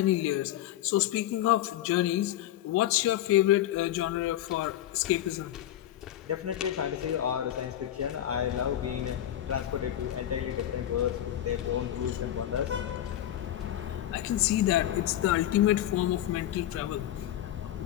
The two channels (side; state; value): right; quieter; 12.4 dB